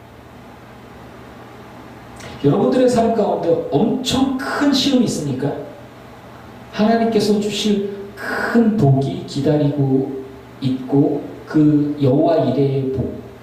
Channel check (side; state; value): both; identical; correlation 1.00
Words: 여러분들의 삶 가운데 엄청 큰 시험이 있으니까 하나님께서 주실 큰 복이 기다리고 있고 그 여호와 이레의 복